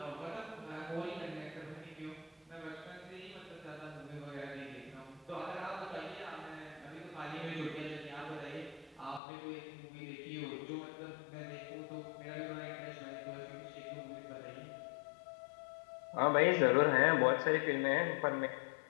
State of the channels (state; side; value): drops out; right; at 9.2 s